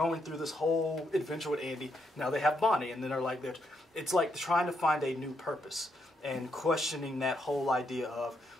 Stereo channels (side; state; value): both; normal; correlation 0.78